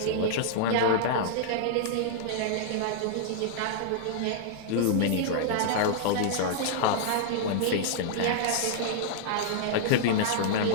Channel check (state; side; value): different; both; correlation -0.01